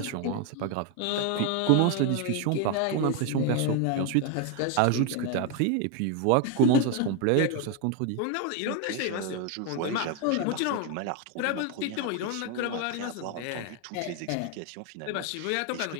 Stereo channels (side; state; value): both; different; correlation 0.01